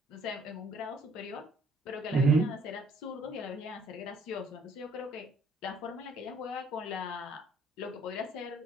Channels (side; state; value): both; normal; correlation 0.62